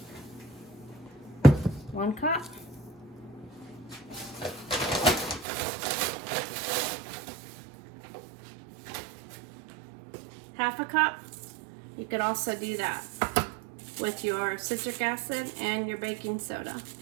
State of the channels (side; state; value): left; drops out; at 5.5 s